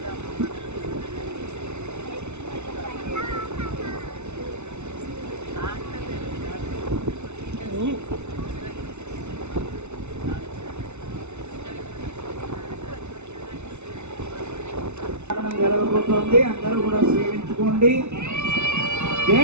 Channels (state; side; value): late; left; 0.82 ms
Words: జరగబోతోంది. అందరూ కూడా సేవించుకోండి.